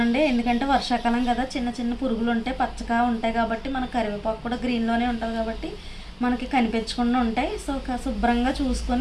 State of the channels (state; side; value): identical; both; correlation 1.00